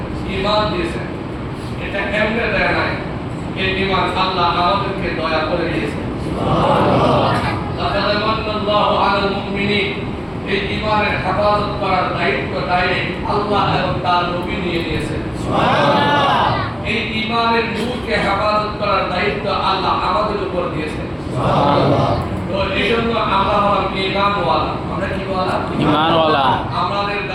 ঈমান দিয়েছেন, এটা কেমনে দেয় নাই, এই ঈমান আল্লাহ আমাদেরকে দয়া করে দিয়েছেন সুবহানাল্লাহ। লাকাদ মান্নাল্লাহু আলাল মুমিনিন, এই ঈমানের হেফাজত করার দায়িত্ব ডাইরেক্ট আল্লাহ এবং তার নবী নিয়ে নিয়েছেন সুবহানাল্লাহ। এই ঈমানের নূরকে হেফাজত করার দায়িত্ব আল্লাহ আমাদের উপর দিয়েছেন সুবহানাল্লাহ। তো এইজন্য আমরা হলাম ঈমানওয়ালা। আমরা কি ওয়ালা? ঈমানওয়ালা। আমাদের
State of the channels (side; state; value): both; identical; correlation 1.00